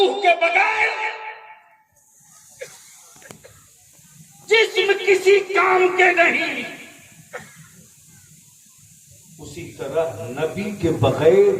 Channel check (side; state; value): both; identical; correlation 1.00